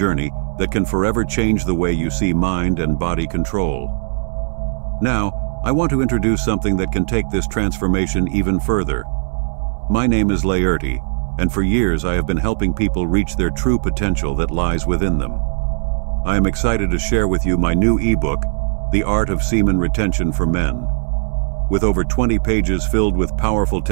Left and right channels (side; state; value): left; silent; digital silence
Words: that can forever change the way you see mind and body control. Now, I want to introduce something that can take this transformation even further. My name is Laerti, and for years I have been helping people reach their true potential that lies within them. I am excited to share with you my new ebook, The Art of Semen Retention for Men. With over 20 pages filled with powerful